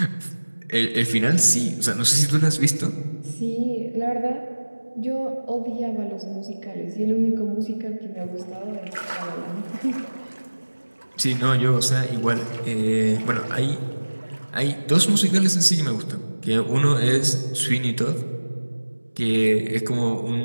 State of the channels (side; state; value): both; inverted; correlation -1.00